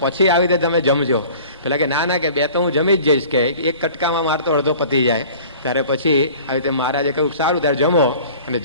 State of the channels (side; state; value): both; inverted; correlation -0.46